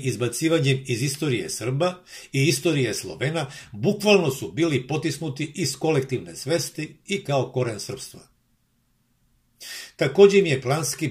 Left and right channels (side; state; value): both; identical; correlation 1.00